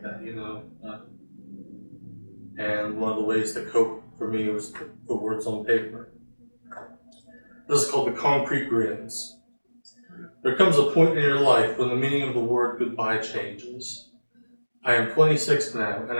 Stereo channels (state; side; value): inverted; both; correlation -1.00